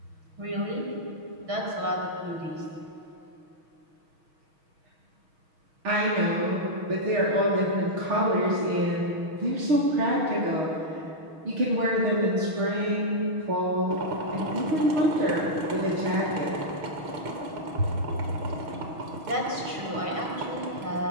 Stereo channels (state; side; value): late; left; 6.3 ms